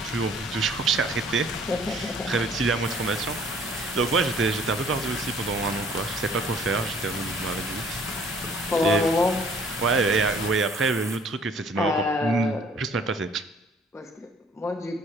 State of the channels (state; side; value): normal; both; correlation 0.56